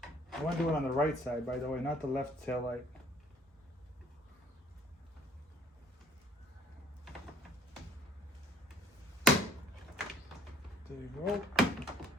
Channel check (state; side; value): normal; both; correlation 0.57